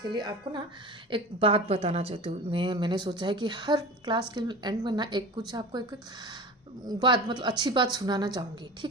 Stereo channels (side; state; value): both; normal; correlation 0.34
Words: लिए आपको ना एक बात बताना चाहती हूँ। मैंने सोचा है कि हर क्लास के एंड में ना एक कुछ आपको एक बात, मतलब अच्छी बात सुनाना चाहूँगी,